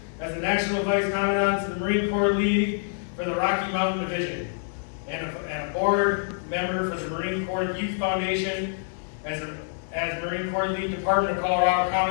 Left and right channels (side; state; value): right; silent; 56 dB below the other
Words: as the National Vice Commandant to the Marine Corps League for the Rocky Mountain Division and a board member for the Marine Corps Youth Foundation as Marine Corps League Department of Colorado